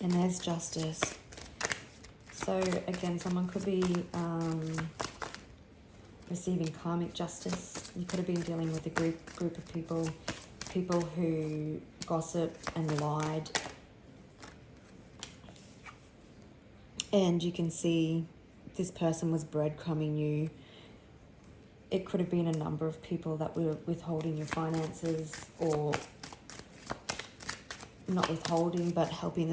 there's justice. So again, someone could be receiving karmic justice. You could have been dealing with a group of people who gossip and lied. And you can see this person was breadcrumbing you. It could have been a number of people that were withholding your finances, or not withholding, but helping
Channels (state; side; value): identical; both; correlation 1.00